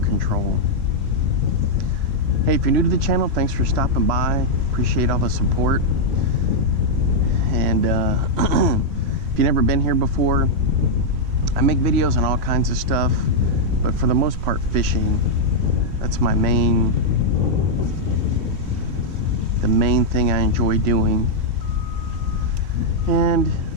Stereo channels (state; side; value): late; left; 3.2 ms